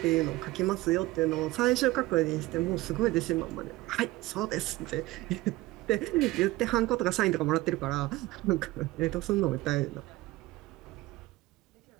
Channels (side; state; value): left; quieter; 18.7 dB